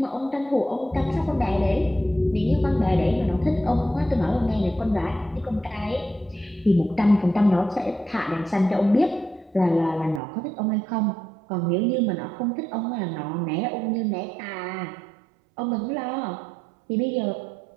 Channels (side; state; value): left; drops out; at 10.2 s